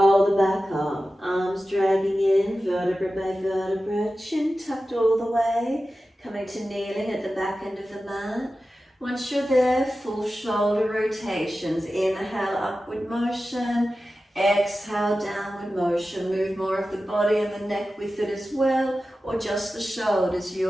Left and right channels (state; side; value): normal; both; correlation 0.94